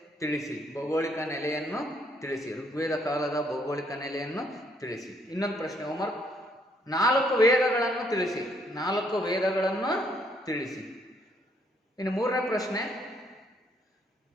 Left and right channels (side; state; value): both; normal; correlation 0.69